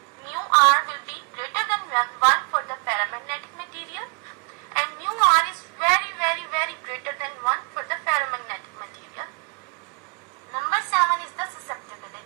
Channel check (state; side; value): quieter; left; 35.6 dB